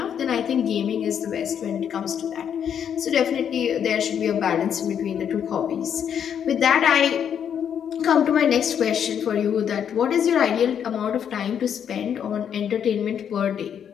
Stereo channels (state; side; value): quieter; right; 8.5 dB